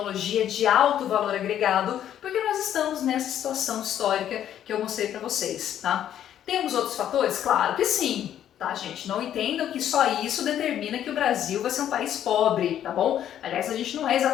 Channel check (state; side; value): quieter; right; 10.6 dB